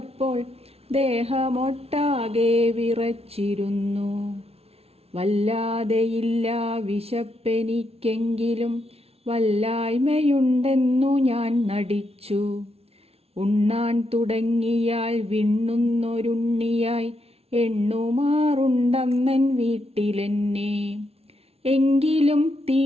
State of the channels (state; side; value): late; left; 0.30 ms